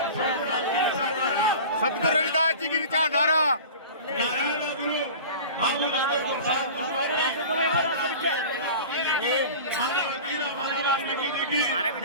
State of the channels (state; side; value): inverted; both; correlation -0.36